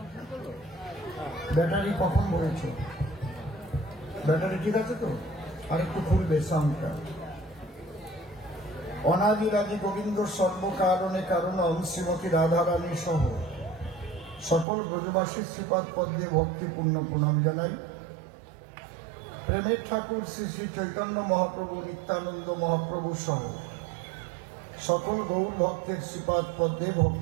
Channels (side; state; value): left; drops out; at 14.7 s